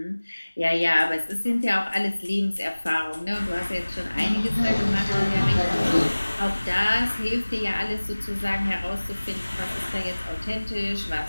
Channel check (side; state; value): both; inverted; correlation -1.00